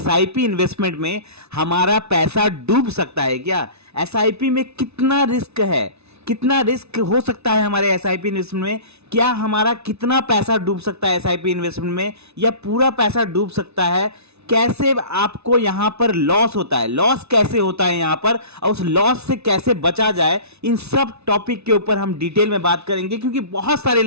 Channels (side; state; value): left; late; 0.80 ms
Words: इन्वेस्टमेंट में हमारा पैसा डूब सकता है क्या? एसआईपी में कितना रिस्क है, कितना रिस्क हो सकता है हमारे एसआईपी इन्वेस्टमेंट में? क्या हमारा कितना पैसा डूब सकता है एसआईपी इन्वेस्टमेंट में या पूरा पैसा डूब सकता है? कैसे आपको यहां पर लॉस होता है, लॉस कैसे होता है यहां पर, और उस लॉस से कैसे बचा जाए, इन सब टॉपिक के ऊपर हम डिटेल में बात करेंगे। क्योंकि बहुत सारे